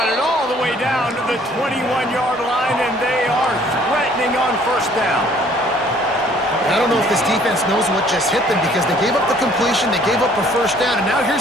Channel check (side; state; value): both; normal; correlation 0.58